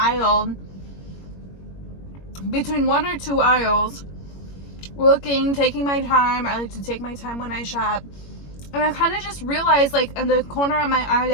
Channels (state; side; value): late; right; 21 ms